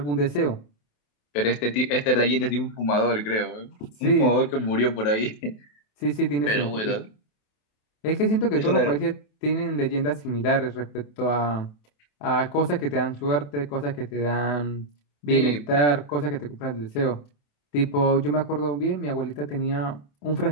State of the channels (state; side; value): late; right; 28 ms